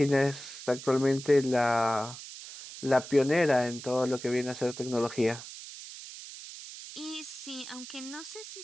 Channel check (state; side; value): noise; right; hiss, 13 dB below the sound